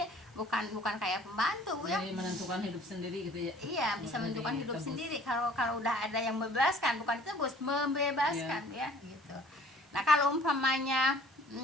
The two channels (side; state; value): both; normal; correlation 0.52